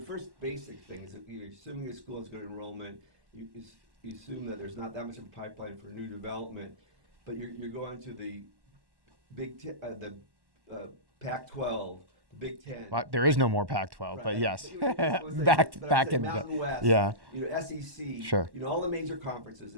basic thing is that you're assuming a school has good enrollment. You assume that there's not that much of a pipeline for new development, but you're going to the Pac-12, the Big Ten. Well, there is no more Pac-12, right? But yes. But I'm saying Mountain West, yeah. SEC, Sure. All the major conferences.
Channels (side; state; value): left; late; 1.1 ms